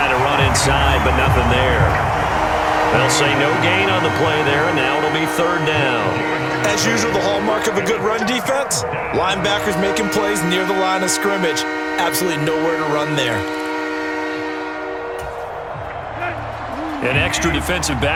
to run inside, but nothing there. They'll say no gain on the play there, and now it'll be 3rd down. As usual, the hallmark of a good run defense, linebackers making plays near the line of scrimmage. Absolutely nowhere to run there. An extra defensive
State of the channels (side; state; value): both; identical; correlation 1.00